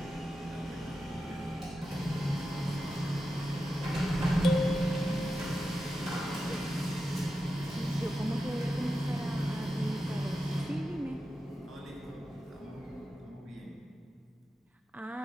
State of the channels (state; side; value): normal; both; correlation 0.90